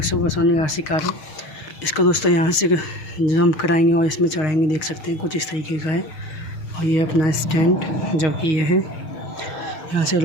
सुपरसोनिक आरसी कार है। इसको दोस्तों यहाँ से जंप कराएंगे और इसमें चढ़ाएंगे। देख सकते हैं कुछ इस तरीके का है। और ये अपना स्टैंड जो कि ये है, यहाँ से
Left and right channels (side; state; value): right; late; 6.3 ms